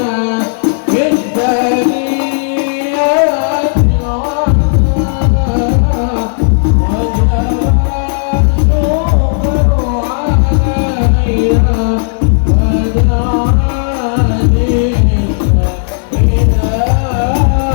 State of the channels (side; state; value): right; silent; digital silence